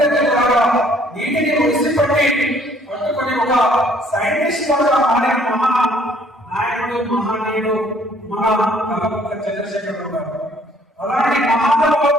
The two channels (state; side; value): normal; both; correlation 0.61